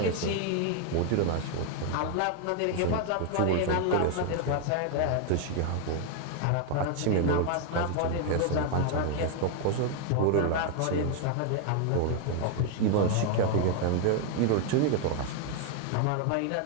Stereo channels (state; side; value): different; both; correlation 0.00